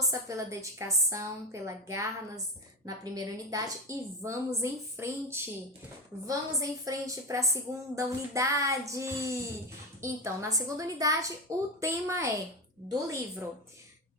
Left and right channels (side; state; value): both; normal; correlation 0.19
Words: pela dedicação, pela garra na primeira unidade e vamos em frente! Vamos em frente para a segunda unidade! Então, na segunda unidade, o tema é do livro